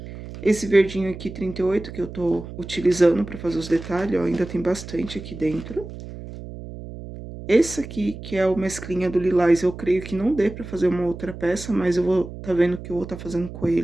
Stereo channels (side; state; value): right; noise; hum, 12 dB below the sound